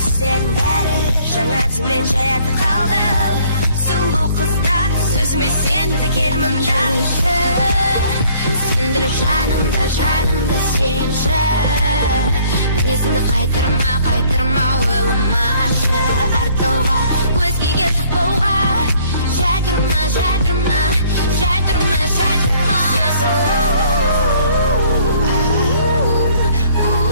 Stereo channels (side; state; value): both; inverted; correlation -0.59